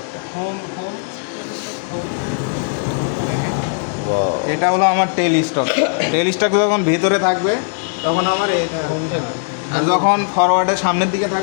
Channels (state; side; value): silent; right; digital silence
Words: এটা হলো আমার টেল স্টক। টেল স্টক যখন ভিতরে থাকবে তখন আমার এই আর যখন ফরওয়ার্ডের সামনের দিকে